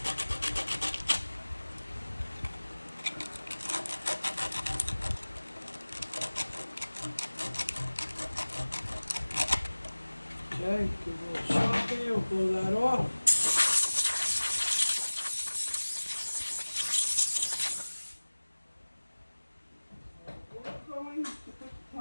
Okay, give a little shot there, we'll blow that off. We're going to put the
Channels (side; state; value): both; inverted; correlation -1.00